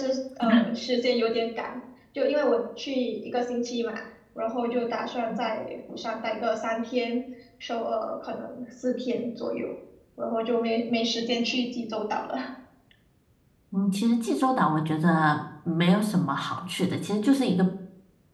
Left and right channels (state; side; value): identical; both; correlation 1.00